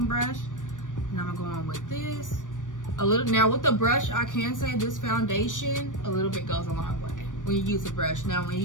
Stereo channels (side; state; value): right; late; 0.87 ms